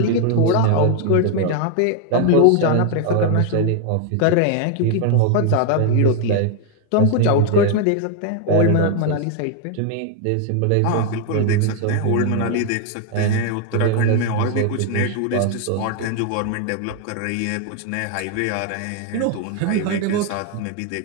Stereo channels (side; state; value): both; different; correlation 0.01